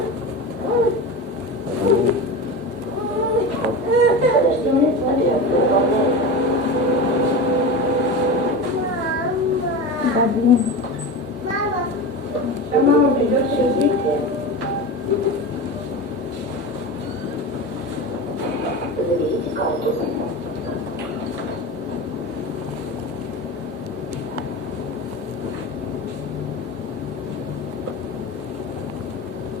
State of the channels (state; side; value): normal; both; correlation 0.25